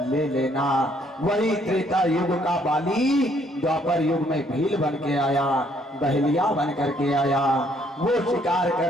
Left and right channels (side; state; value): both; normal; correlation 0.66